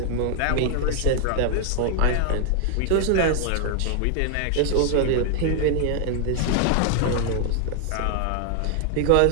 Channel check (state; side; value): different; both; correlation 0.00